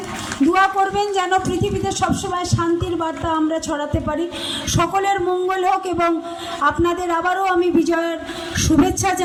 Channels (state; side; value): identical; both; correlation 1.00